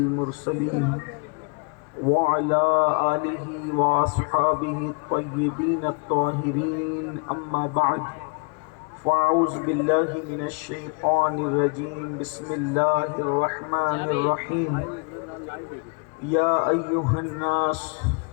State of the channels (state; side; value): quieter; right; 34.8 dB